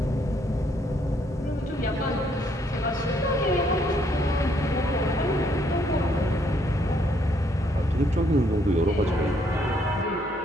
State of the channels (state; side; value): normal; both; correlation 0.70